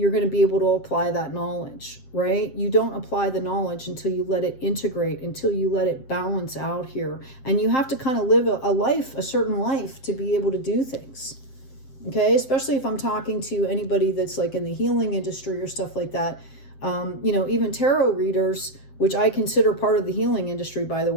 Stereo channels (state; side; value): late; right; 7.6 ms